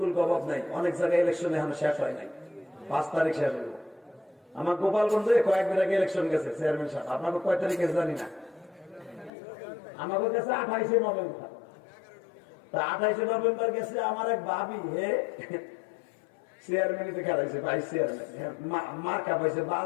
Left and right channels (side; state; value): right; drops out; at 9.3 s